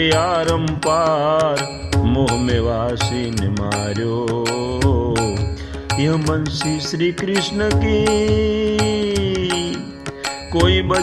आरम पार मोह में वासी ने मार्यो यह बंसी श्री कृष्ण की कोई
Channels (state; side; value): identical; both; correlation 1.00